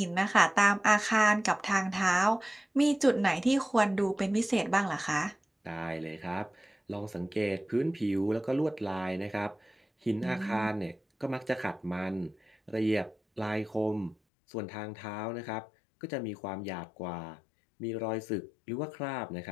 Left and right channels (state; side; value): drops out; right; at 14.2 s